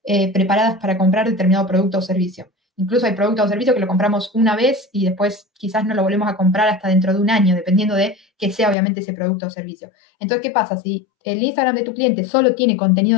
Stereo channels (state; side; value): drops out; right; at 8.8 s